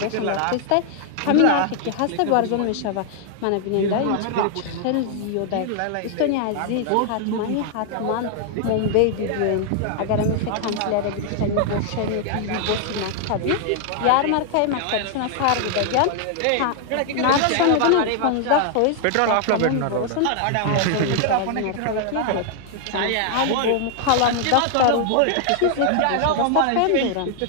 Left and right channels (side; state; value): both; different; correlation 0.00